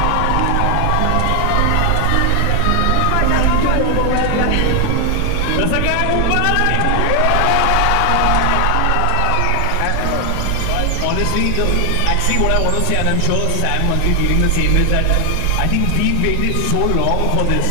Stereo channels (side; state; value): both; different; correlation 0.00